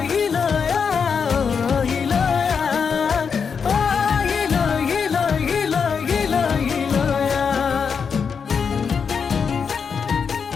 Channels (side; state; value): right; quieter; 6.2 dB